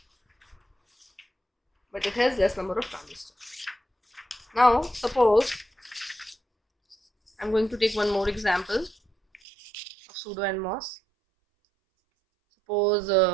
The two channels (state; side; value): drops out; left; at 9.4 s